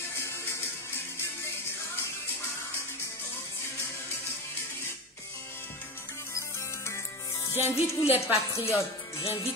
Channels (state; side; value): normal; both; correlation 0.22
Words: J'invite tous les patriotes,